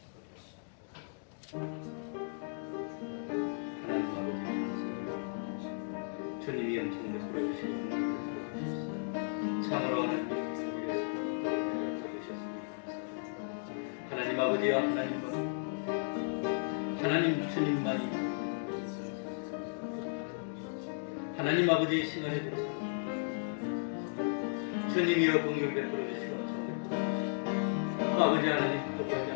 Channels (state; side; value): silent; right; digital silence